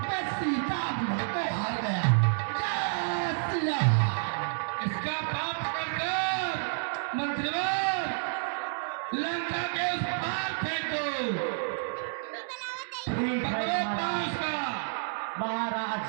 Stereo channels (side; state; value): left; silent; digital silence